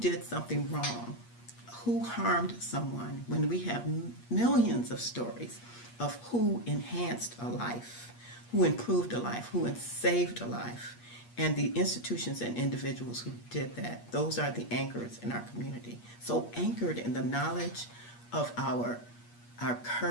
something wrong, who harmed someone, when we have millions of stories of who enhanced a life, who improved a life, who saved a life, and the institutions and individuals who did that. Those are the anchors in our community. So anchored in the knowledge of our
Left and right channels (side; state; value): right; late; 8.4 ms